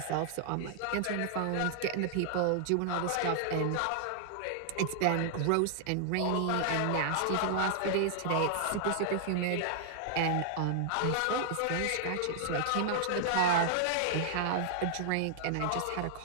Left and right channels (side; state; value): both; different; correlation -0.01